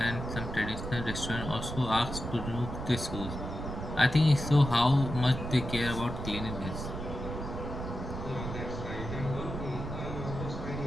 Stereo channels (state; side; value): noise; right; rumble, 6 dB below the sound